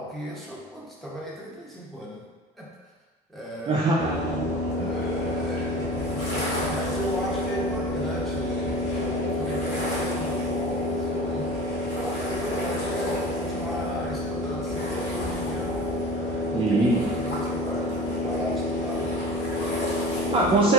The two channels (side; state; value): both; normal; correlation 0.37